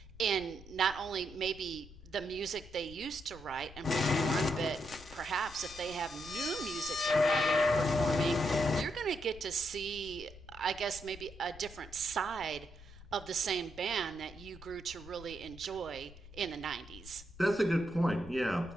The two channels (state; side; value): noise; left; rumble, 18 dB below the sound